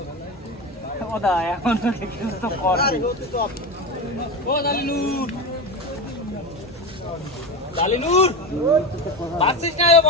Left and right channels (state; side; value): normal; both; correlation 0.22